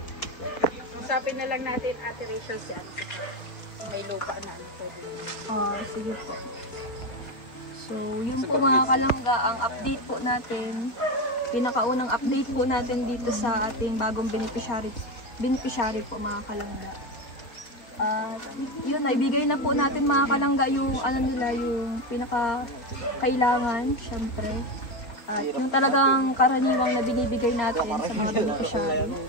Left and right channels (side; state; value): right; late; 4.6 ms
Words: Usapin na lang natin Ate Rachel si Ate. May lupa na. Sige po. So, yun po mga kalangga, ang update po natin, pinakaunang update po natin dito sa ating bagong beneficiary po mga kalangga. At yun, naibigay na po natin mga kalangga yung ano nila, yung pinaka-kailangan, syempre. At yung talagang karaniwang na binibigay natin sa mga beneficiary.